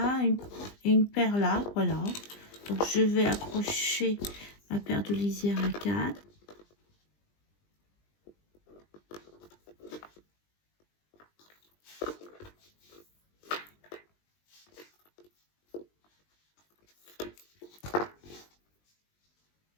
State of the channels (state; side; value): late; right; 20 ms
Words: et une paire là. Voilà. Donc je vais accrocher ma paire de lisière à 4.